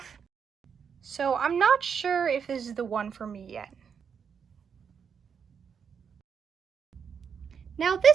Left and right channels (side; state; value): left; quieter; 6.8 dB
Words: So I'm not sure if this is the one for me yet. Now